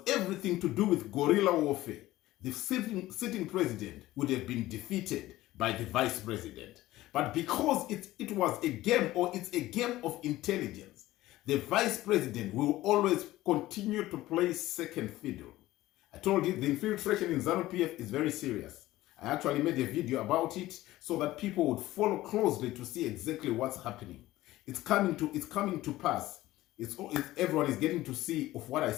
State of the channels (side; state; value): right; quieter; 16.4 dB